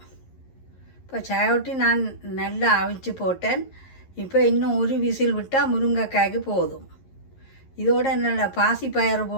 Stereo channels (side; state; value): right; late; 11 ms